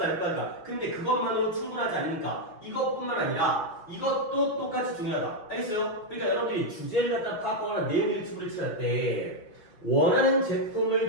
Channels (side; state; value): right; late; 5.5 ms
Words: 할 거 아니야. 근데 그것만으로 충분하지 않으니까 이것뿐만 아니라 이것도 똑같이 중요하다. 알겠어요? 그러니까 여러분들이 주제를 갖다 파악하거나 내용 일치부를 칠할 때 원하는 제품을